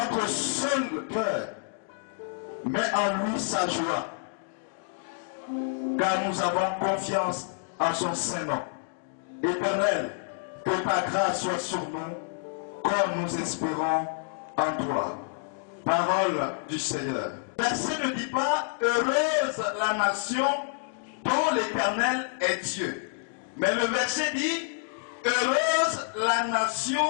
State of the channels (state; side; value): silent; right; digital silence